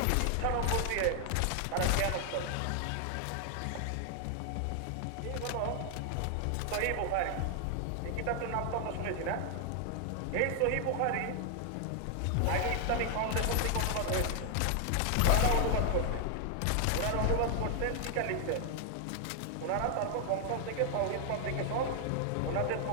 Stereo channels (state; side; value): different; both; correlation 0.00